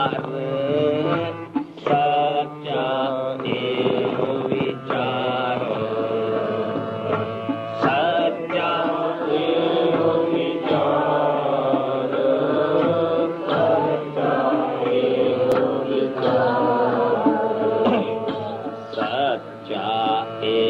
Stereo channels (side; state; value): both; identical; correlation 1.00